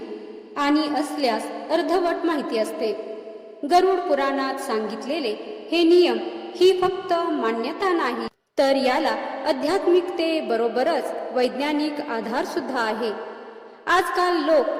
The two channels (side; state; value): both; identical; correlation 1.00